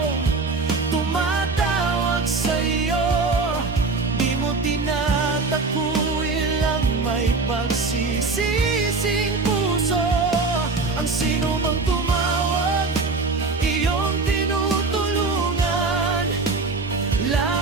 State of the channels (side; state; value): left; quieter; 3.9 dB